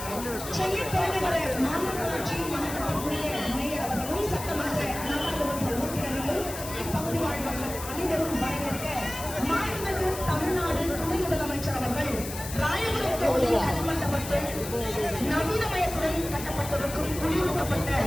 சென்னை பெருநகர மாநகராட்சி மாநகரக்கூடிய மேயர் அவர்களும் சட்டமன்ற நாடாளுமன்ற உறுப்பினர்களும் இப்பகுதி வாழ்வர்கள் அனைவரும் வரவேற்க மாண்புமிகு தமிழ்நாடு துணை முதலமைச்சர் அவர்கள் ராயபுரம் தொகுதி கல்மண்டபத்தில் நவீனமயத்துடன் கட்டப்பட்டிருக்கும் குளிரூட்டப்பட்ட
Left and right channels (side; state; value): left; noise; hiss, 10 dB below the sound